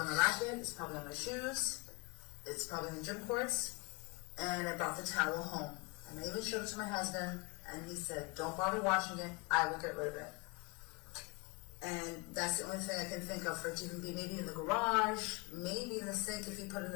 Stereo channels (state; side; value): quieter; right; 28.2 dB